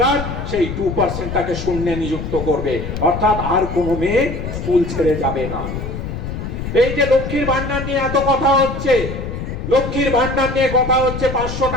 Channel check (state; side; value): noise; left; rumble, 6 dB below the sound